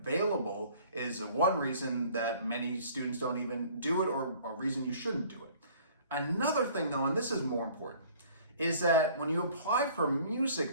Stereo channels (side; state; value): both; inverted; correlation -0.53